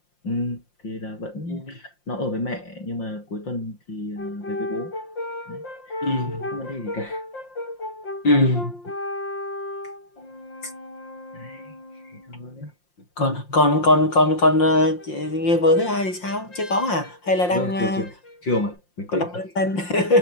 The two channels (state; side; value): late; right; 5.7 ms